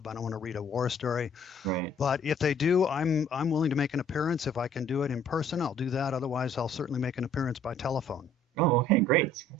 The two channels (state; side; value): normal; both; correlation 0.58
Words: I don't want to read a war story. Right. But if they do, I'm willing to make an appearance. If I can do it in person, I'll do that. Otherwise, I'll certainly make an appearance by telephone. Oh, okay, great.